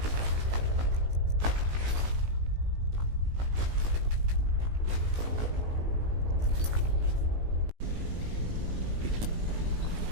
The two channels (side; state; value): left; late; 18 ms